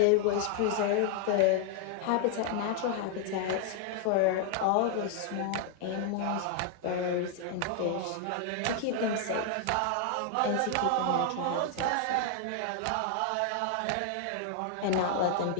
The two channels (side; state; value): both; different; correlation 0.00